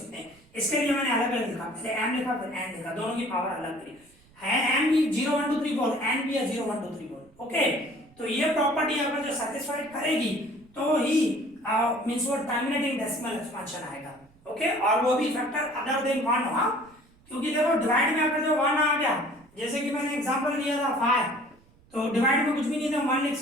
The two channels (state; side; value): noise; right; rumble, 29 dB below the sound